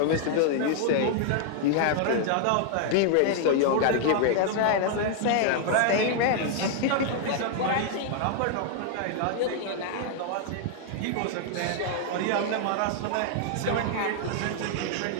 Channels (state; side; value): different; both; correlation 0.00